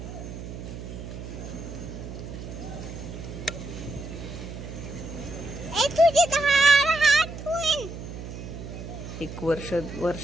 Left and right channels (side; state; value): right; noise; hum, 10 dB below the sound